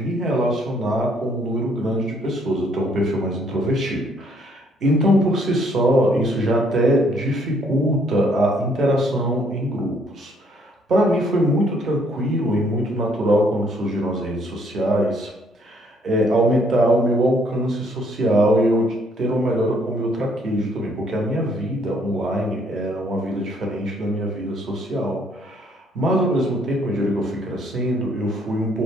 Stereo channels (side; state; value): both; normal; correlation 0.66